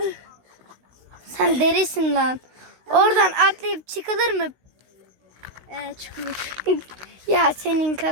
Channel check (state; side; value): late; left; 16 ms